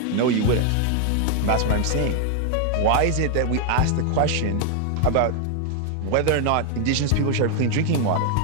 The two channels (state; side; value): different; both; correlation 0.00